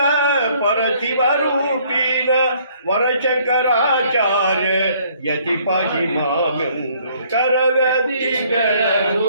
ಪರಶಿವ ರೂಪೀನ ವರಶಂಕರಾಚಾರ್ಯ ಯತಿ ಪಾಹಿ ಮಾವೆಂದು ಕರಗತಿಗಳ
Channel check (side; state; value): both; inverted; correlation -0.62